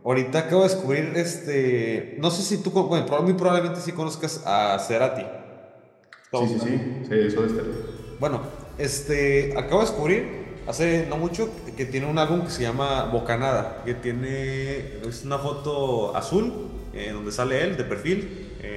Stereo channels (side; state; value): both; identical; correlation 1.00